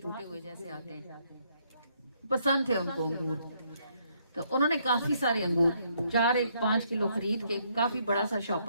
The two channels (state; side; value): inverted; both; correlation -0.72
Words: ہوئے جیسے آتے ہیں، پسند تھے ان کو انگور۔ تو انہوں نے کافی سارے انگور 5 کلو خرید کے کافی بڑا سا